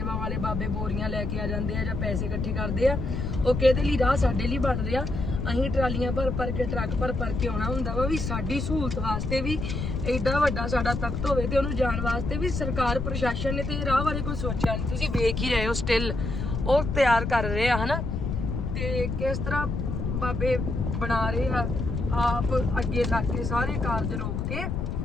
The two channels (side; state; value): left; noise; rumble, 2 dB below the sound